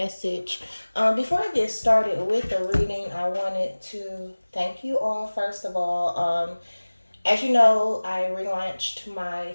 Before I get started with the reading, I wanted to thank you all first of all. As you know, I relaunched my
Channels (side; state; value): both; inverted; correlation -1.00